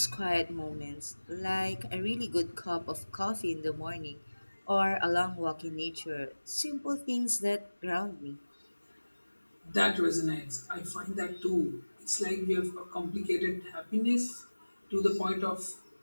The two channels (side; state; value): both; inverted; correlation -1.00